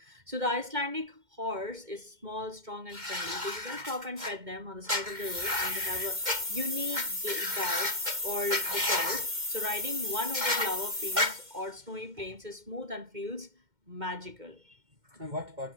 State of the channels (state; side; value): late; left; 2.1 ms